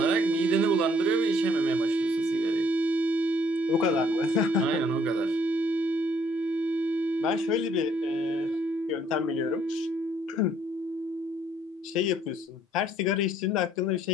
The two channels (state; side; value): normal; both; correlation 0.64